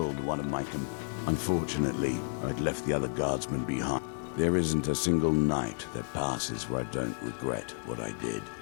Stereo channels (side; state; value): right; silent; digital silence